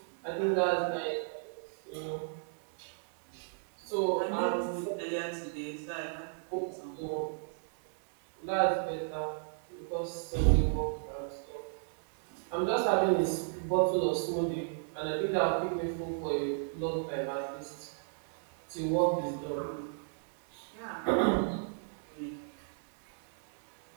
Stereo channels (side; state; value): left; silent; digital silence